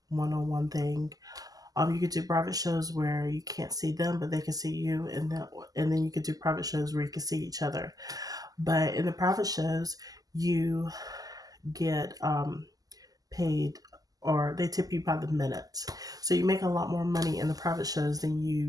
one-on-one thing. You could do private shows where you can't see them, but they can see you, and then you could do private shows where you can see each other. But in the private shows, you get paid, or they tip you by the minute. So you make a lot more money in the private shows than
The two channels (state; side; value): late; left; 0.17 ms